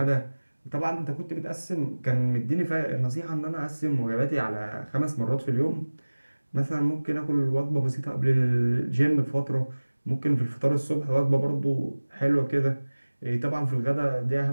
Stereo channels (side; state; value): both; inverted; correlation -1.00